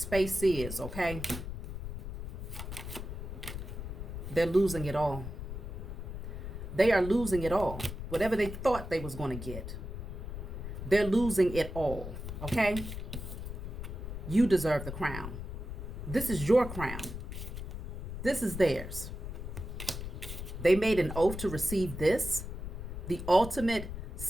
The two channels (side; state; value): left; noise; rumble, 7 dB below the sound